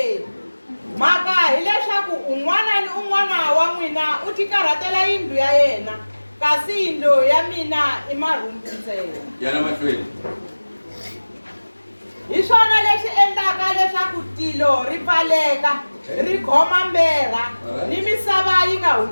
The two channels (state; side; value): inverted; both; correlation -1.00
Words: Maka hileswaku un'wana ni un'wana wa n'wina u tikarhatela yindlu ya yena kasi yindlu ya mina i marhumbu ntsena. Yana mahlweni. Hi swona leswi endlaka leswaku tilo ri pfaleka ri khoma mbera ni misava yi nga